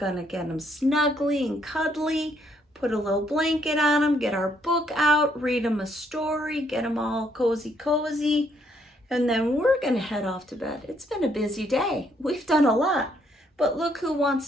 get them snuggly and cuddly, put a little blanket on them, get our book out, read them a story, get them all cozy, and then we're gonna head off to bed. It's been a busy day. We've done a lot, but look who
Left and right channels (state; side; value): normal; both; correlation 0.71